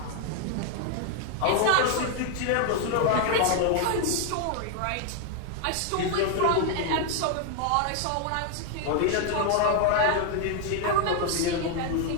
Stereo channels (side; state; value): both; different; correlation 0.00